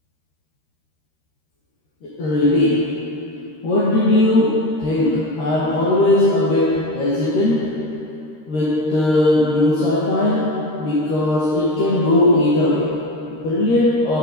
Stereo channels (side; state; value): right; late; 13 ms